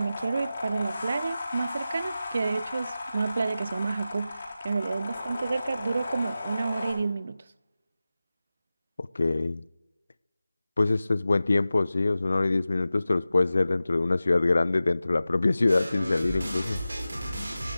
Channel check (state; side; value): inverted; both; correlation -0.94